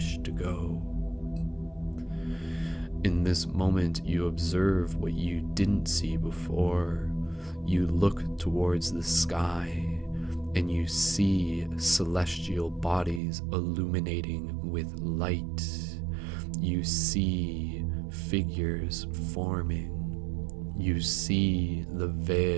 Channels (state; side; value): drops out; left; at 13.2 s